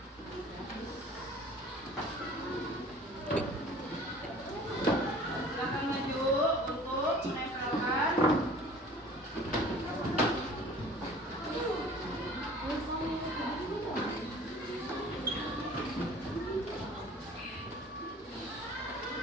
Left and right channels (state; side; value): normal; both; correlation 0.47